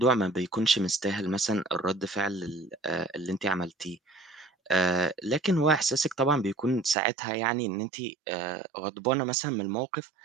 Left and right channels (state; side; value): drops out; left; at 7.0 s